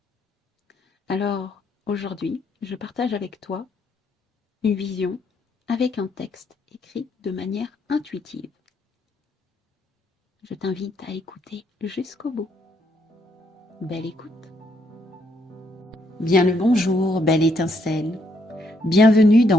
Alors, aujourd'hui, je partage avec toi une vision avec un texte écrit de manière intuitive. Je t'invite à écouter jusqu'au bout. Belle écoute. Bien le bonjour, belle étincelle. Bienvenue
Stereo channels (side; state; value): both; normal; correlation 0.73